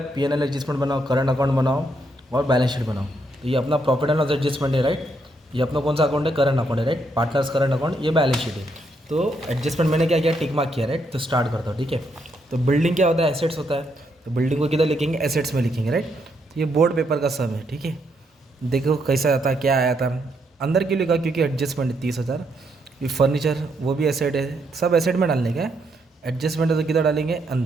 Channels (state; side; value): normal; both; correlation 0.76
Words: P&L एडजस्टमेंट बनाओ, करंट अकाउंट बनाओ और बैलेंस शीट बनाओ। तो ये अपना प्रॉफिट एंड लॉस एडजस्टमेंट है। राइट, ये अपना कौन सा अकाउंट है, करंट अकाउंट है। राइट, पार्टनर्स करंट अकाउंट, ये बैलेंस शीट है। तो एडजस्टमेंट मैंने क्या किया, टिक मार्क किया। राइट, तो स्टार्ट करता हूँ, ठीक है। तो बिल्डिंग क्या होता है, एसेट्स होता है। तो बिल्डिंग को किधर लिखेंगे, एसेट्स में लिखेंगे। राइट, तो ये बोर्ड पेपर का सम है, ठीक है। देखो कैसा आता, क्या आया था। अंदर क्यों लिखा, क्योंकि एडजस्टमेंट है 30,000। ये फर्नीचर वो भी एसेट है, सब एसेट में डालने का है। एडजस्टमेंट है तो किधर डालेंगे,